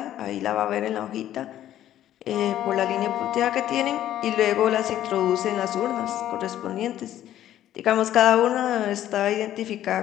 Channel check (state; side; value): quieter; right; 12.2 dB